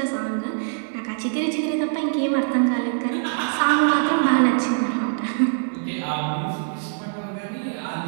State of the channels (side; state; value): left; silent; digital silence